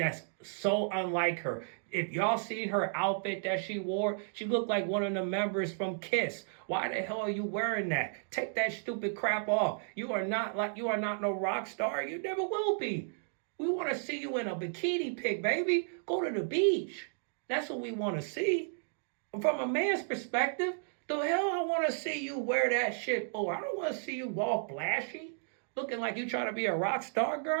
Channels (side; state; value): left; silent; digital silence